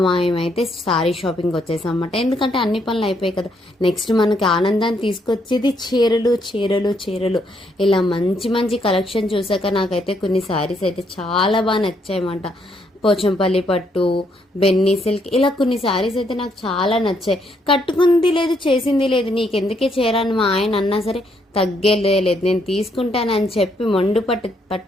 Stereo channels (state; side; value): normal; both; correlation 0.73